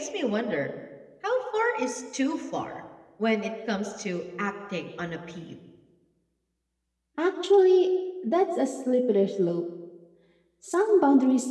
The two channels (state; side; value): identical; both; correlation 1.00